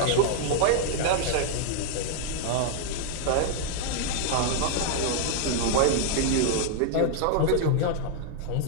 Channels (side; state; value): both; different; correlation -0.01